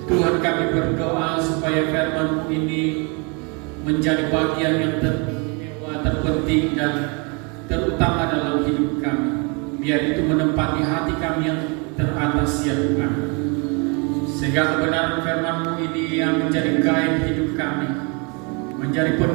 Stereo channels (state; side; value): quieter; left; 32.6 dB